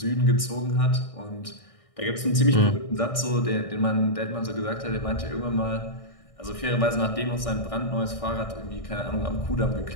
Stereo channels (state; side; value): late; right; 1.6 ms